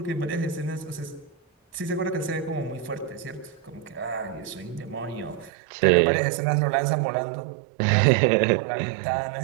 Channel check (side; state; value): left; drops out; at 5.5 s